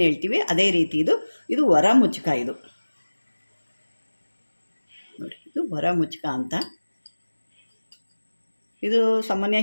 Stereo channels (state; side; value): inverted; both; correlation -1.00